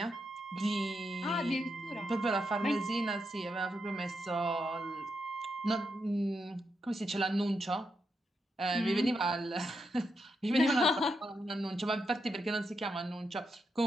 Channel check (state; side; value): normal; both; correlation 0.84